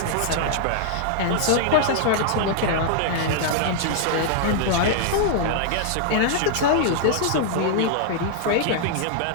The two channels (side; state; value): both; different; correlation -0.01